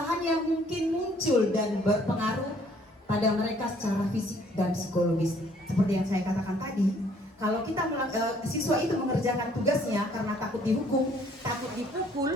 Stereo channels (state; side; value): normal; both; correlation 0.61